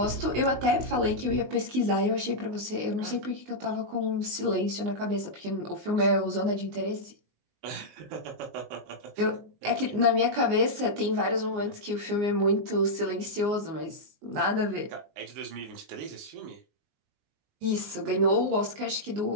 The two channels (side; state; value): left; late; 19 ms